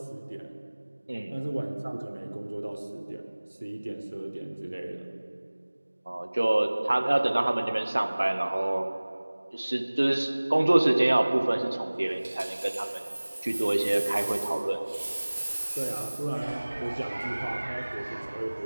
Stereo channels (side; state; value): both; inverted; correlation -1.00